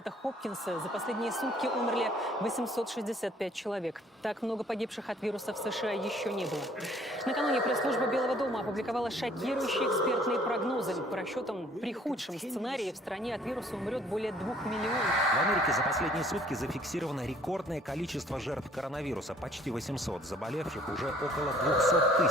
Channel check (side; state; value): both; normal; correlation 0.58